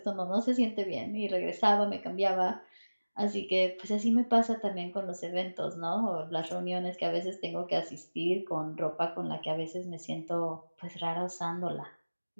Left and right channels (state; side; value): inverted; both; correlation -1.00